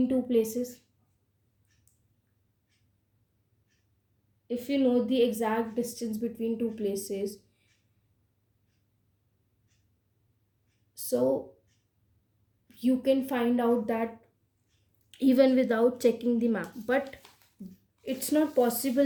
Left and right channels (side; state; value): both; identical; correlation 1.00